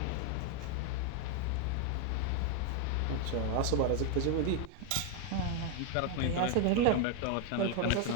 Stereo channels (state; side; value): different; both; correlation 0.01